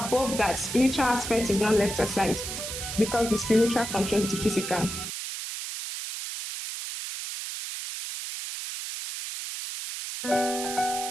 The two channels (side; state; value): right; noise; hiss, 6 dB below the sound